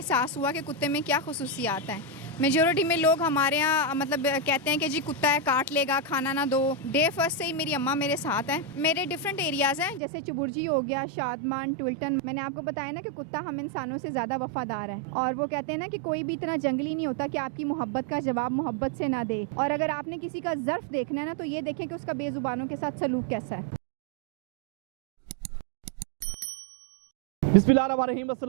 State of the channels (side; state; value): left; drops out; at 10.0 s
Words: हुआ कि कुत्ते में क्या खसूसियात हैं। मेजॉरिटी में लोग हमारे यहाँ मतलब कहते हैं कि जी कुत्ता है, काट लेगा, खाना ना दो। डे फर्स्ट से ही मेरी अम्मा मेरे साथ हैं। मेरे डिफरेंट एरियाज़ हैं, जैसे चुबुर्जी हो गया, शादमान, टुल्टन। मैंने आपको बताया ना कि कुत्ता हम इंसानों से ज़्यादा वफादार है, और वो कहते हैं ना कि कोई भी इतना जंगली नहीं होता कि आपकी मोहब्बत का जवाब मोहब्बत से ना दे। और अगर आपने किसी का ज़र्फ देखना है ना, तो ये देखें कि उसका बेज़ुबानों के साथ सलूक कैसा है। बिस्मिल्लाहिर्रहमानिर्रहीम,